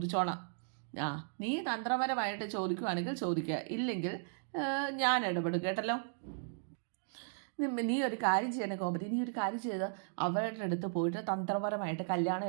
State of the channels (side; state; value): left; silent; digital silence